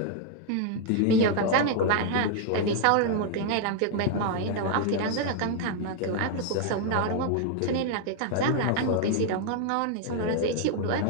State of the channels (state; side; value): different; both; correlation 0.00